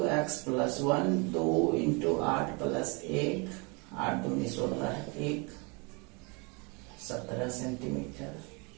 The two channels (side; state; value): left; quieter; 30.8 dB